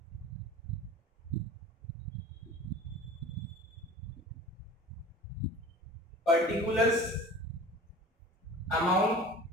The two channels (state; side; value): normal; both; correlation 0.39